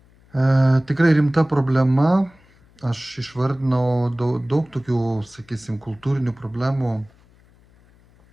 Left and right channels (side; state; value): left; noise; hum, 30 dB below the sound